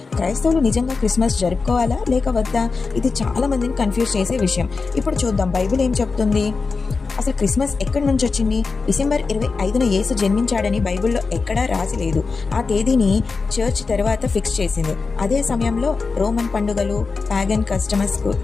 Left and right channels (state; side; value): quieter; right; 4.4 dB